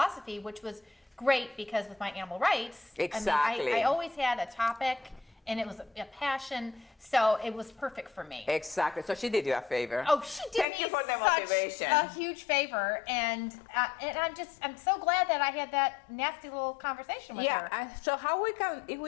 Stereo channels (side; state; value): right; drops out; at 10.7 s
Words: which was great, because with my animal rights, exactly. I always had a topic, and it was a passion, so it was perfect for me. Exactly. So she did you a favor. Oh, she did Thank me you for the motivation. A huge favor, and I'm so glad that I had that nasty little conversation with her. Yeah. So how if